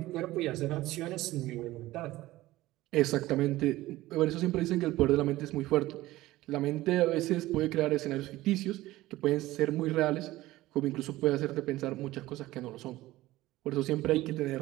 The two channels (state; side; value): quieter; left; 17.1 dB